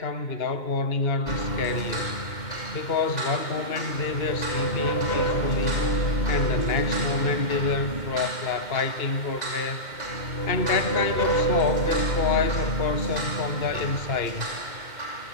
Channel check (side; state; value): right; late; 2.1 ms